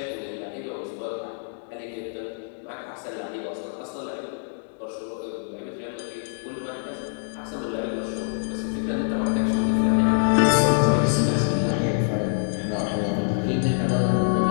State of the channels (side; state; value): right; silent; digital silence